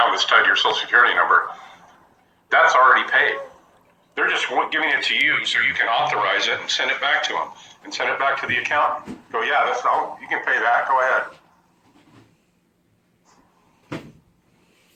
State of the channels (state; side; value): identical; both; correlation 1.00